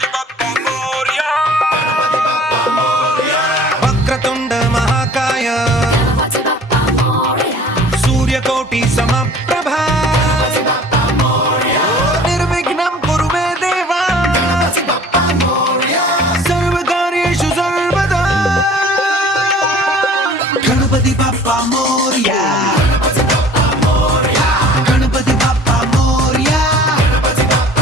బప్పా మోరియా, గణపతి బప్పా మోరియా. వక్రతుండ మహాకాయ, గణపతి బప్పా మోరియా, సూర్యకోటి సమప్రభా, గణపతి బప్పా మోరియా, నిర్విఘ్నం కురు మే దేవా, గణపతి బప్పా మోరియా, సర్వకార్యేషు సర్వదా, గణపతి బప్పా మోరియా.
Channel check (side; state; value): both; normal; correlation 0.48